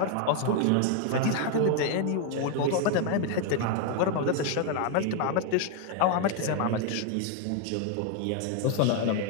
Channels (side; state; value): both; different; correlation 0.00